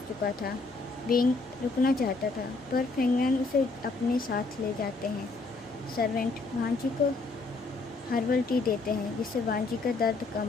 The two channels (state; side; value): quieter; right; 3.6 dB